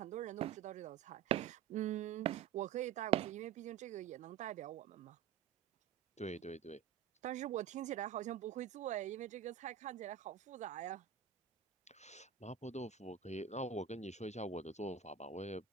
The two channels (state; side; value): quieter; left; 8.3 dB